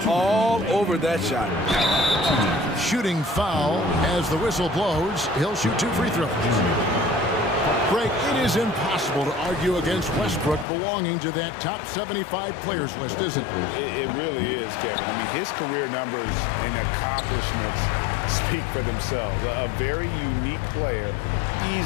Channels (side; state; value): right; drops out; at 10.7 s